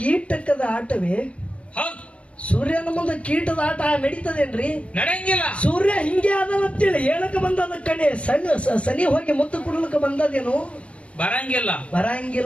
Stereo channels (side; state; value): right; late; 0.062 ms